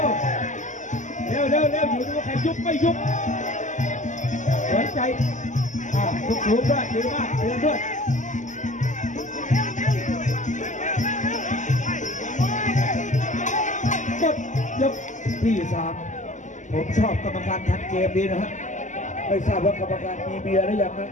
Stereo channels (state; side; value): late; right; 0.36 ms